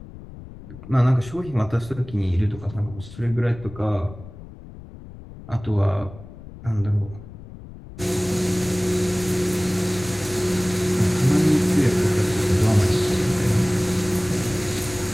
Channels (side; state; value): left; noise; rumble, 16 dB below the sound